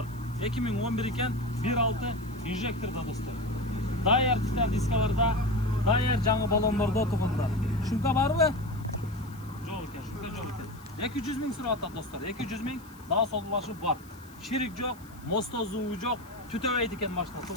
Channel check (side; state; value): left; noise; hiss, 24 dB below the sound